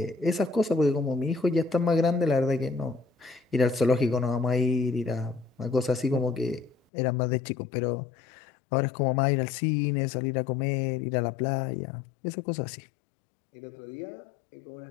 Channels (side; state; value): right; drops out; at 6.8 s